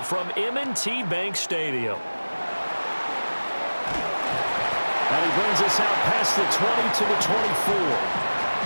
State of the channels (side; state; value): both; inverted; correlation -1.00